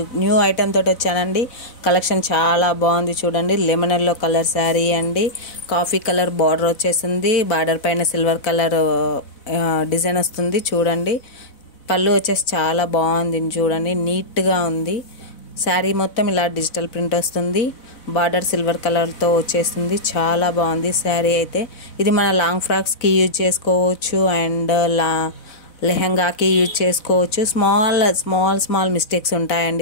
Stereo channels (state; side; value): late; right; 4.0 ms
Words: new item తోటి వచ్చానండి. కలెక్షన్ చాలా బాగుంది చూడండి. లెమన్ ఎల్లో కలర్ శారీ అండి. కాఫీ కలర్ బార్డర్ వచ్చేసింది. బార్డర్ పైన సిల్వర్ కలర్ డిజైన్ వస్తుంది చూడండి. పళ్ళు వచ్చేసి చాలా బాగుంది చూడండి, నీట్గా ఉంది. శారీ మొత్తం ఇలా డిజిటల్ ప్రింట్ వస్తుంది. బార్డర్ సిల్వర్ కలర్తో వచ్చేస్తుంది. చాలా బాగుంది శారీ అయితే. ఇది మన లాంగ్ ఫ్రాక్స్కి యూజ్ చేసుకోవచ్చు అండ్ లెహంగాకి యూజ్ చేసుకోవచ్చు. స్మాల్ మిస్టేక్స్